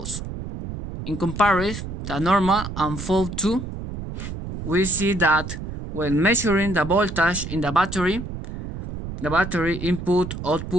In comparison, the normal and fault 2, we see that when measuring the voltage in the battery input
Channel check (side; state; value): right; noise; rumble, 8 dB below the sound